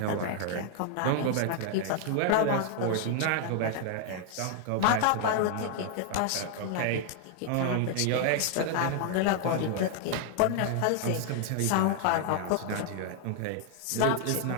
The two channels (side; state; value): both; different; correlation 0.00